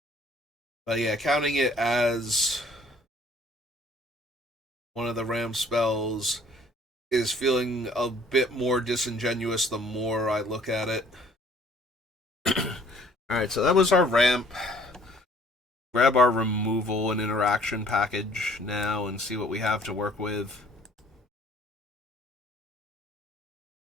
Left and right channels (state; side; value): normal; both; correlation 0.57